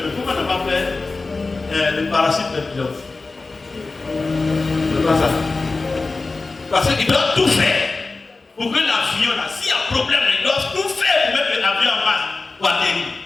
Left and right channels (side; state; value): right; quieter; 3.7 dB